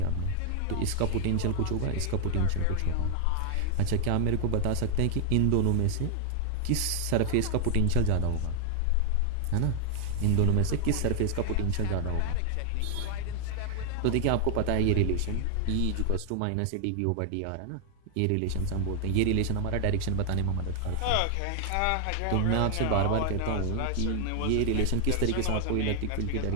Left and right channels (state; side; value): different; both; correlation 0.00